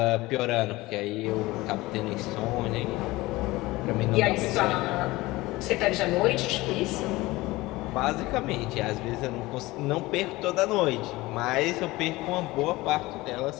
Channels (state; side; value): quieter; right; 20.0 dB